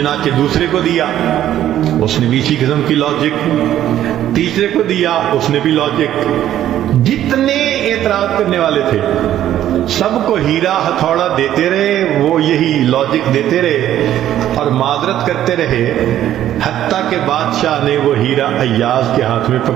دوسرے کو دیا, اس نے بھی اسی قسم کی لاجک, تیسرے کو دیا, اس نے بھی لاجک. جتنے اعتراض کرنے والے تھے سب کو ہیرا ہتھوڑا دیتے رہے, وہ یہی لاجک دیتے رہے اور معذرت کرتے رہے, حتیٰ کہ بادشاہ نے وہ ہیرا ایاز کے ہاتھ میں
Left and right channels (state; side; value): quieter; left; 11.9 dB